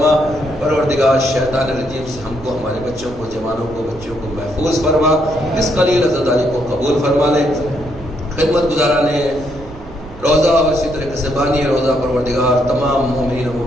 پروردگار شیطان الرجیم سے ہم کو ہمارے بچوں کو جوانوں کو بچوں کو محفوظ فرما، اس قلیل عزاداری کو قبول فرما لے۔ خدمت گزاران روزہ اور اسی طریقے سے بانی روزہ پروردگار تمام مومنین و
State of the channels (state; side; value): noise; right; rumble, 17 dB below the sound